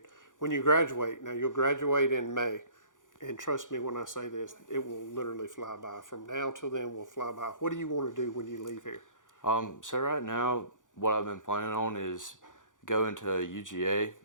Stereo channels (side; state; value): right; late; 0.87 ms